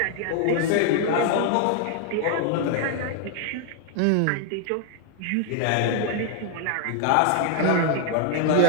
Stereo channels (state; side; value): different; both; correlation 0.00